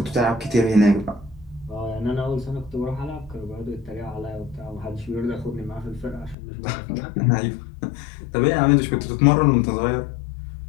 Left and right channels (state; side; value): drops out; right; at 6.4 s